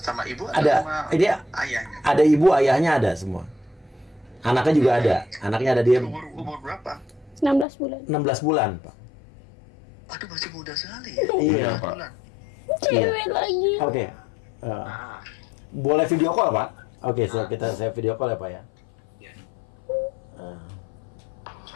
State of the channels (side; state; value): right; drops out; at 7.7 s